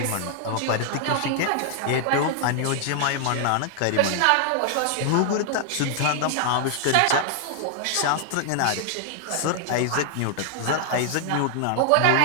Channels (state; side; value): different; both; correlation 0.00